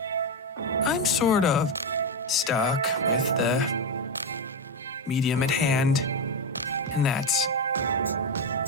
"I'm sort of stuck with the medium at hand, and that's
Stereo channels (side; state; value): both; normal; correlation 0.10